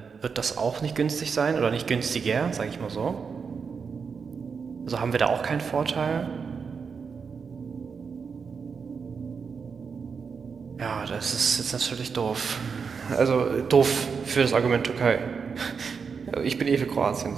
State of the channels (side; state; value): left; quieter; 5.7 dB